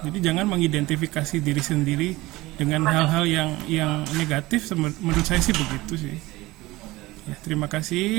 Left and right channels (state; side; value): quieter; left; 19.6 dB